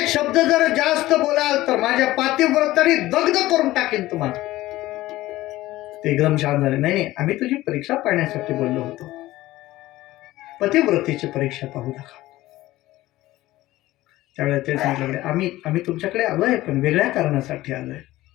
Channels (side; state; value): right; quieter; 16.8 dB